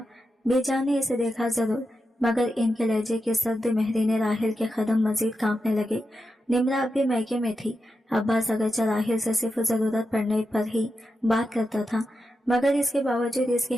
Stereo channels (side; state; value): both; normal; correlation 0.88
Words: बेजान ने इसे देखा जरूर, मगर इनके लहजे की सर्द मेहरी ने राहिल के कदम मजीद कांपने लगे। निम्रा अब भी मैके में थी। अब्बास अगरचे राहिल से सिर्फ जरूरत पड़ने पर ही बात करता था, मगर इसके बावजूद इसकी